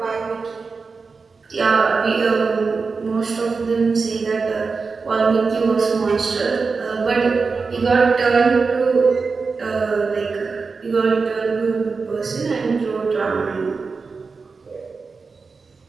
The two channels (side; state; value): left; quieter; 4.6 dB